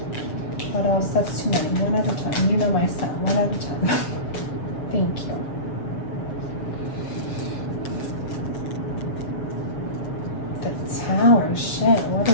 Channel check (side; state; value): right; late; 7.3 ms